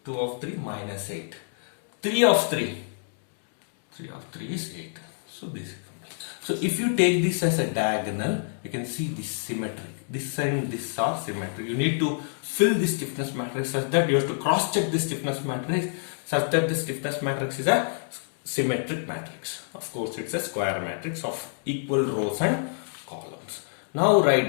2 of 3 minus 8. 3 of 3. 3 of 3 is 8. So this is complete. So if you take this as a diagonal, you can see this symmetric. This and this are symmetric. You need to fill the stiffness matrix such that you have to cross check the stiffness matrix such that the stiffness matrix is a symmetric matrix. Of course, it's a square matrix of equal rows and columns. Now write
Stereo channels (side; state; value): right; silent; digital silence